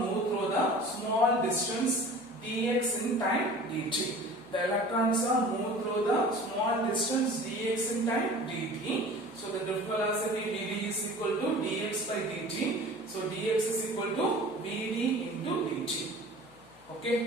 through the small distance dx in time dt. The electrons are moved through the small distance dx in time dt. So the drift velocity vd is equal to dx by dt. So dx is equal to vd into dt. Okay,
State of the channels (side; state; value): left; noise; hum, 28 dB below the sound